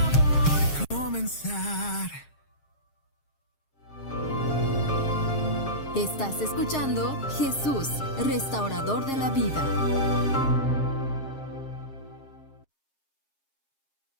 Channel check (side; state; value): right; late; 7.4 ms